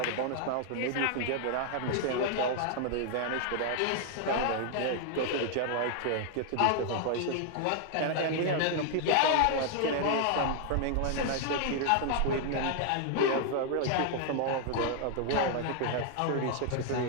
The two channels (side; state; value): both; different; correlation 0.00